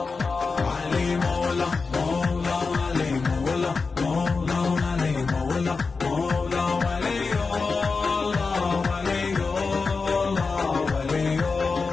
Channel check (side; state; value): right; quieter; 4.5 dB